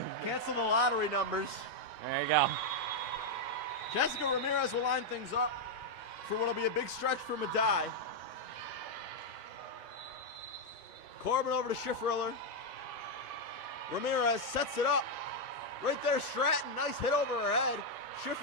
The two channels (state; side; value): normal; both; correlation 0.00